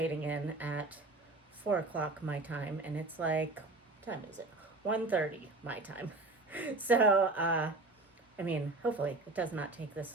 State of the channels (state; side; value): quieter; left; 3.2 dB